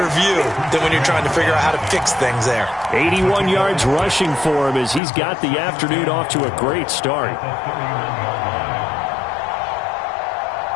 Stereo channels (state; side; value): drops out; right; at 5.0 s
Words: view than when you're trying to figure out how to fix things there. 81 yards rushing for him as he's got the afternoon off to a great start.